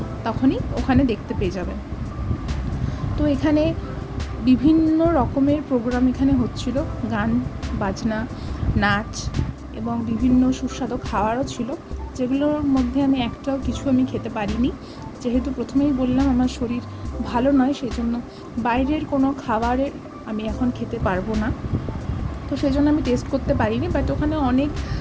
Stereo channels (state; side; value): identical; both; correlation 1.00